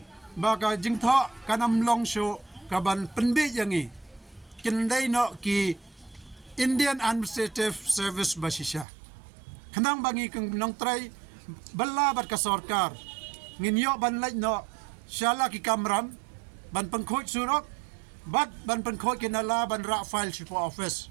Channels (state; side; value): drops out; left; at 8.8 s